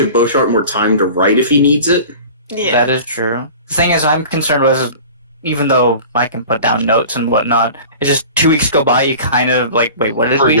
BaronvonCreepy more time to write if he needs it. Yeah. That is true. The thing is, I'm concerned with, even though I can put down notes and whatnot, it's just 2 weeks go by, you kind of like, wait, what did we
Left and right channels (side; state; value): both; inverted; correlation -0.40